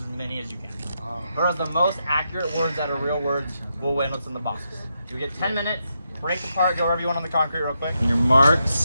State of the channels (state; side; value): inverted; both; correlation -0.83